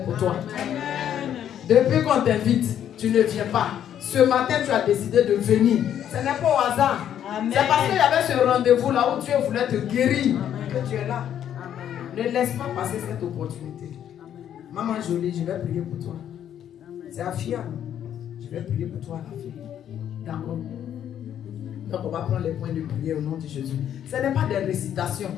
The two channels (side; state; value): right; quieter; 10.0 dB